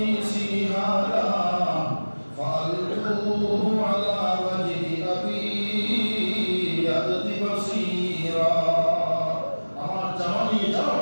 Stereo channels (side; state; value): both; inverted; correlation -1.00